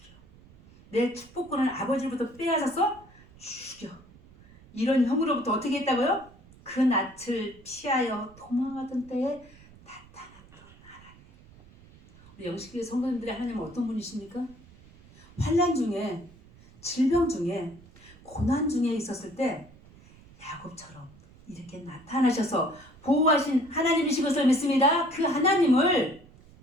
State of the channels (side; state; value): right; noise; rumble, 24 dB below the sound